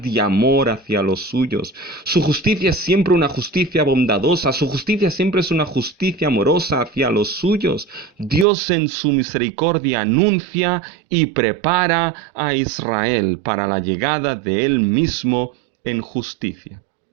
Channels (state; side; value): drops out; left; at 8.5 s